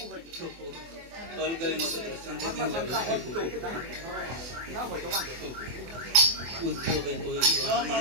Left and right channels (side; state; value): left; late; 24 ms